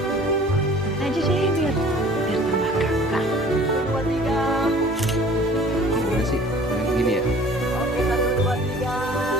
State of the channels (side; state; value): both; normal; correlation 0.49